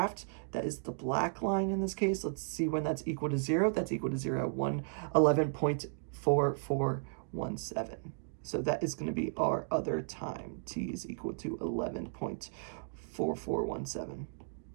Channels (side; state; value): left; silent; digital silence